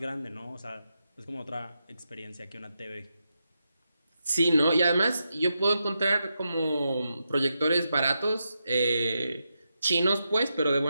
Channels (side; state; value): both; inverted; correlation -0.86